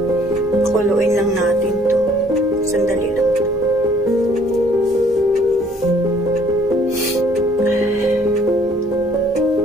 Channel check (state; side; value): normal; both; correlation 0.60